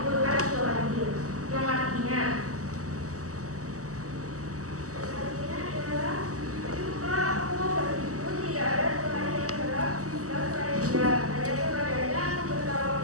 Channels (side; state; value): left; late; 0.66 ms